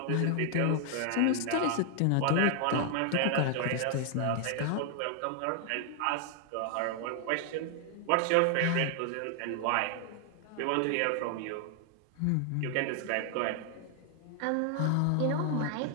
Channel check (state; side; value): different; both; correlation 0.00